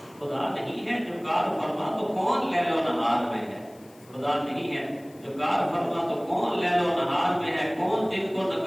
خدا نہیں ہے جو کار فرما تو کون لیل و نہار میں ہے. خدا نہیں ہے جو کار فرما تو کون لیل و نہار میں ہے. کون دن کو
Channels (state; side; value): noise; left; hiss, 27 dB below the sound